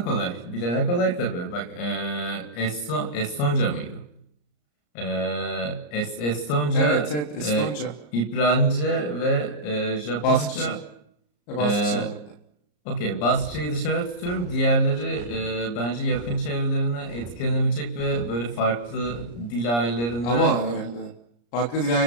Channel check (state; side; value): late; right; 34 ms